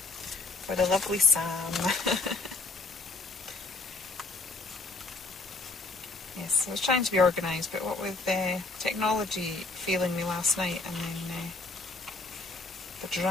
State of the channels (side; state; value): right; quieter; 3.4 dB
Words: for the lovely Sam. Yes, I was trying to be organised, but what with technology failing me last night and then the